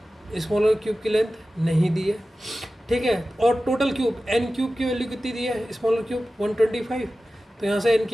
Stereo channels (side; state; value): both; normal; correlation 0.95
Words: स्मॉलर क्यूब की लेंथ नहीं दी है। ठीक है, और टोटल क्यूब एन क्यूब की वैल्यू कितनी दी है, स्मॉलर क्यूब 125। तो यहाँ से एन